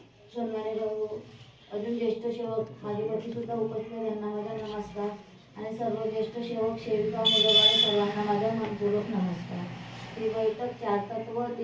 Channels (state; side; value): identical; both; correlation 1.00